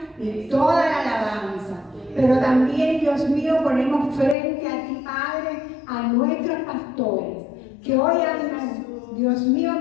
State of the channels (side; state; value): right; drops out; at 4.4 s